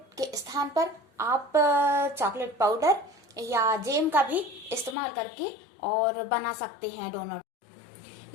के स्थान पर आप चॉकलेट पाउडर या जेम का भी इस्तेमाल करके और बना सकते हैं डोनट।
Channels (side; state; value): right; drops out; at 5.0 s